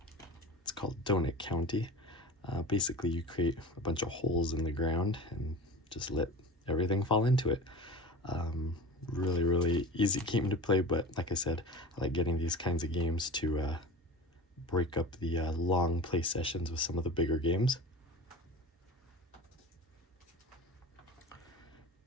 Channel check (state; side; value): normal; both; correlation 0.34